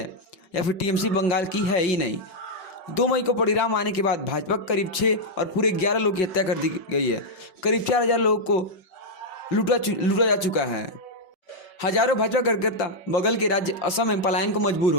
या फिर टीएमसी बंगाल की है ही नहीं? 2 मई को परिणाम आने के बाद भाजपा करीब 6 और पूरे 11 लोगों की हत्या कर दी गई है। करीब 4000 लोगों को लूटा जा चुका है। हजारों भाजपा कार्यकर्ता बगल के राज्य असम में पलायन को मजबूर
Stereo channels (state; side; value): late; right; 5.4 ms